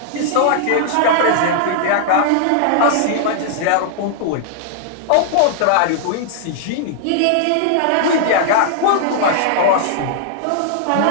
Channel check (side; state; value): both; different; correlation -0.01